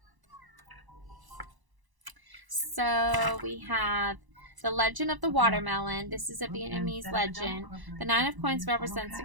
So we have the legend of the watermelon. This is a Vietnamese legend. The 9 of coins represents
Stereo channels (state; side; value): late; left; 1.0 ms